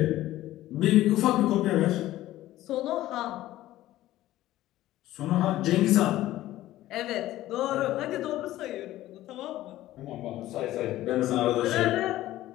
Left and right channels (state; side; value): quieter; right; 15.1 dB